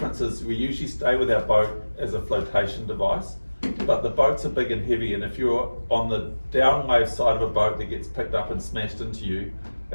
is we usually stay with our boat as a flotation device, but the boats are big and heavy, and if you're on the downwave side of a boat that gets picked up and smashed into you,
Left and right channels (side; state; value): both; inverted; correlation -1.00